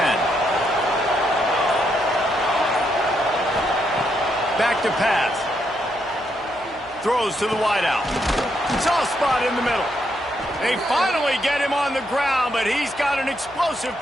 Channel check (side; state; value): left; noise; hum, 25 dB below the sound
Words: Back to pass. Throws to the wideout. Soft spot in the middle. They finally get him on the ground, but he's got an explosive